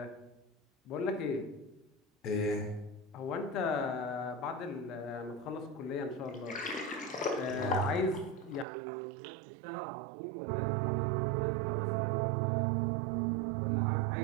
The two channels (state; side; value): drops out; left; at 8.7 s